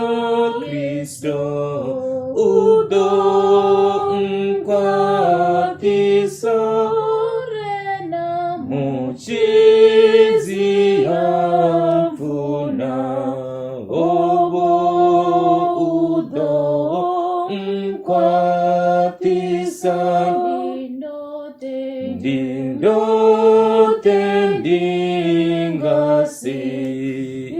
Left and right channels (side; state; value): both; identical; correlation 1.00